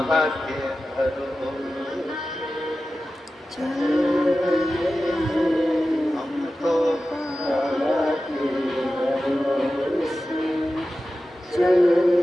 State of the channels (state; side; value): normal; both; correlation 0.94